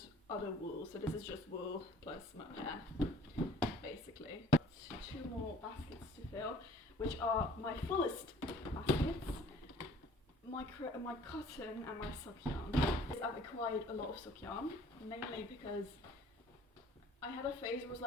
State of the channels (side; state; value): both; normal; correlation 0.53